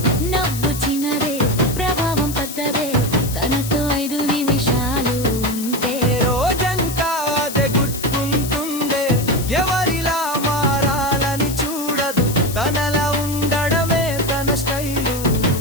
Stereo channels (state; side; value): noise; left; hiss, 9 dB below the sound